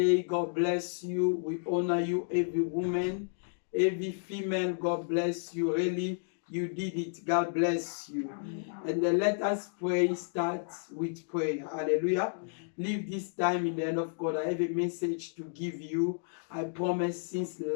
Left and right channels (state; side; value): silent; right; digital silence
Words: God bless you. We honor you, every woman, every female. God bless you. Really, you did it. God bless you. And then let us pray. Start with prayer. Hallelujah. Leave this time in the hand of God. I have a message to give you. I promised since